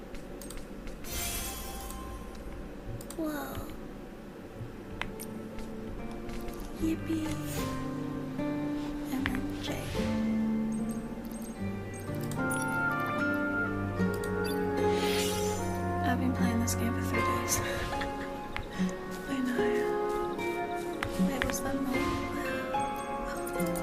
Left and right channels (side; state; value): both; identical; correlation 1.00